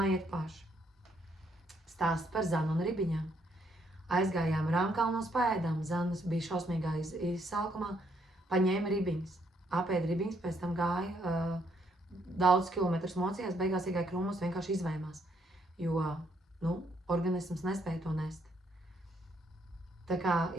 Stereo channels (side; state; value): both; normal; correlation 0.72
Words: paši. Stāsts par zanu un ribiņām. Aizgājām Rāmkalnos paēdām, zanas bija šausmīgā izsalkumā, paņēma ribiņas. Apēda ribiņas, pēc tam gāja daudz kilometrus mocījās, beigās iegāja krūmos, vienkārši izvaimās, jo, organisms nespēja to nest. Tā kā,